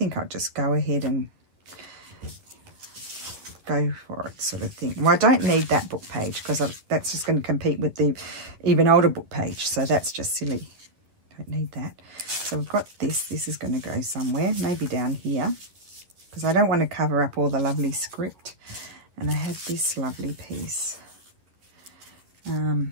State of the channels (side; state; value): left; late; 11 ms